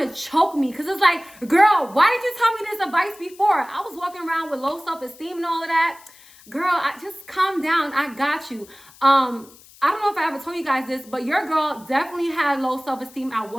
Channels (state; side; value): noise; left; hiss, 24 dB below the sound